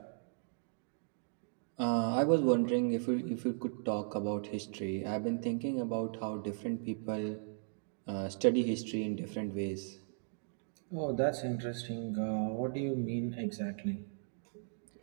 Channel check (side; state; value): left; silent; digital silence